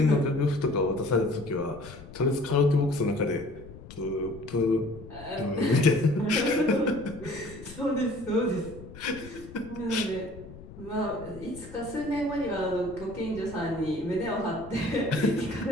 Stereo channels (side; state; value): left; noise; rumble, 16 dB below the sound